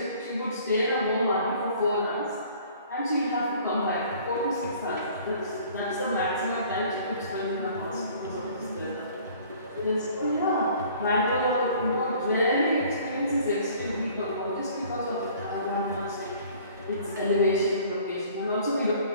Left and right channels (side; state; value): both; inverted; correlation -0.52